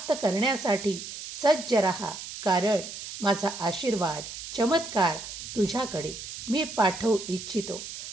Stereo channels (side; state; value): right; noise; hiss, 10 dB below the sound